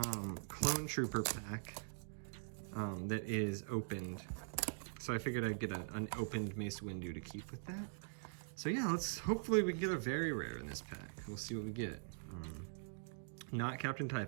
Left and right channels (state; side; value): silent; left; digital silence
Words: Clone Trooper pack that is opened. So I figured I'd get an opened Mace Windu to keep with that. So yeah, hopefully we can get a very rare in this pack. We'll see what we get. Not Captain